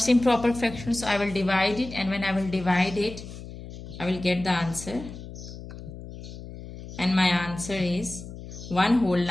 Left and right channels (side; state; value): left; noise; hum, 13 dB below the sound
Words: improper fraction, so I will divide it, and when I will divide it, I will get the answer. And my answer is 1 whole